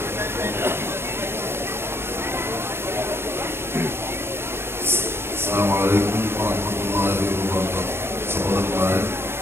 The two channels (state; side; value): late; left; 0.12 ms